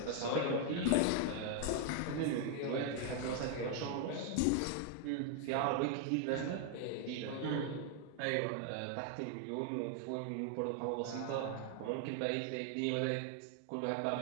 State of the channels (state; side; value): different; both; correlation 0.00